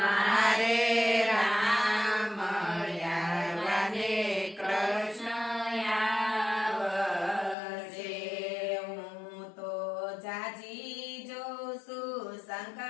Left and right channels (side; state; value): right; drops out; at 7.6 s